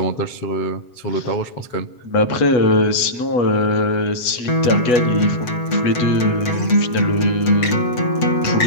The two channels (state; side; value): late; right; 7.9 ms